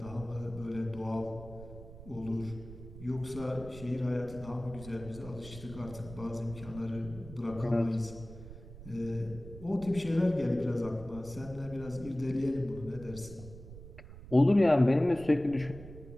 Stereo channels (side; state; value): right; noise; rumble, 15 dB below the sound